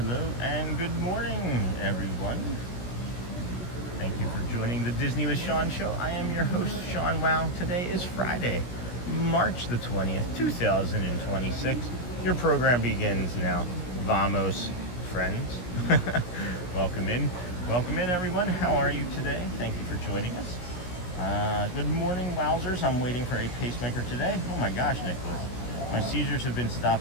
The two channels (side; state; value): right; late; 17 ms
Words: and good morning, everyone. Thank you for joining the Disney with Sean show. I am your host, Sean Wow. Today is Friday, March the 20th, 2026. Your program begins now. Vamos, friends. Welcome in, everyone. How are you today? Thank you for joining us. Good morning, wowzers. I'm waiting for a pacemaker today. Oh my gosh, Nicholas. My seizures have been